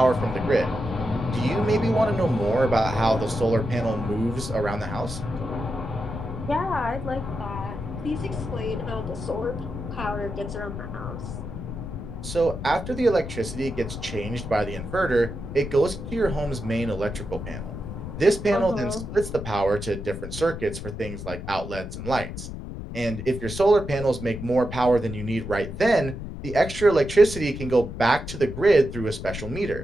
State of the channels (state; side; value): noise; left; rumble, 8 dB below the sound